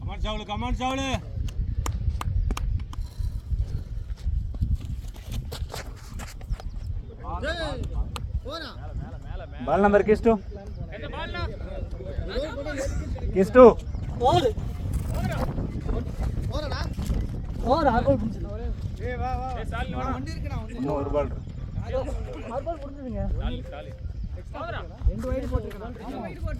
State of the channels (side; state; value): both; identical; correlation 1.00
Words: கமான் சாவல போடா பால் நம்பர் கிஸ்டு என்ன பால்னா கிஸ்டு போடு போறடா போடு ஆகோல் புடிச்சு ஏய் வா வா ஏய் சாலி வாடா வண்டி இருக்குடா இன்னும் ஒரு பால் ஆகோல் புடிச்சுங்க சாலி போடா ரெண்டு வைட் போட்டுருக்கா